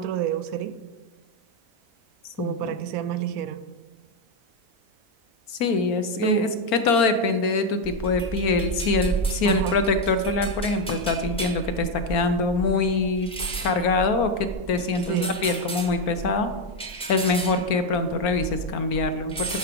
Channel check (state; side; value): normal; both; correlation 0.06